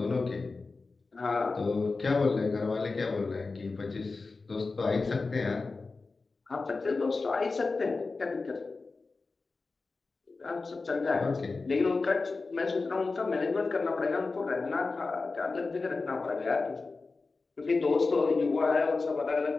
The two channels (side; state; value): right; quieter; 3.9 dB